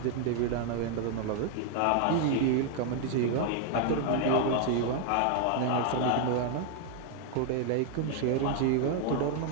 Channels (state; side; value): different; both; correlation 0.00